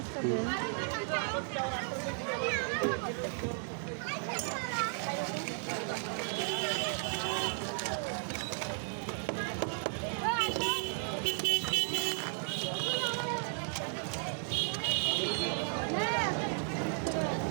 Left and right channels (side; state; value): left; silent; 55 dB below the other